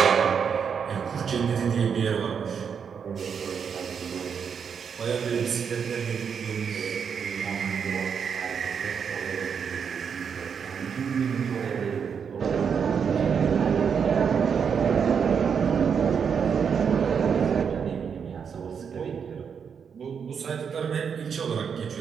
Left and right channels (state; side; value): quieter; left; 6.8 dB